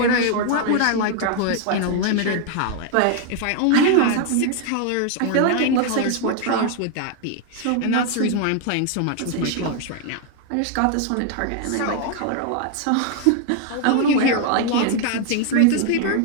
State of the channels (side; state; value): both; different; correlation 0.00